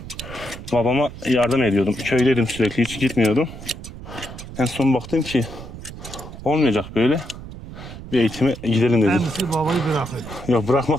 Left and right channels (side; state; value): right; noise; rumble, 13 dB below the sound